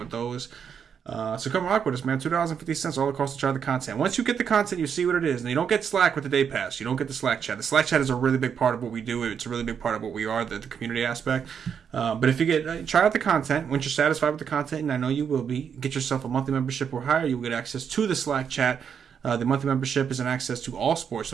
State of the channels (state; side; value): quieter; left; 7.4 dB